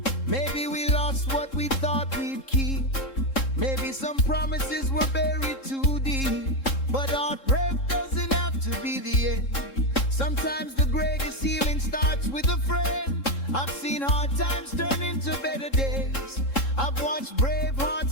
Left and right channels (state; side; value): late; right; 3.7 ms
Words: Maybe we lost what we thought we'd keep. Maybe some promises were buried too deep. But heartbreak doesn't have to be the end. Sometimes the greatest healing starts with a friend. I've seen hard times turn into better days. I've watched brave